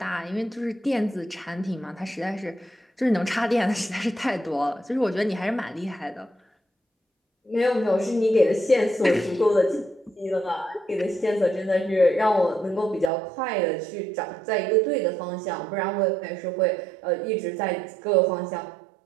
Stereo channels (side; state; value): left; drops out; at 13.1 s